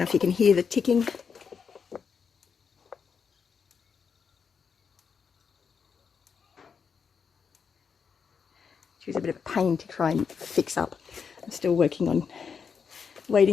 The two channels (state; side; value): quieter; right; 6.2 dB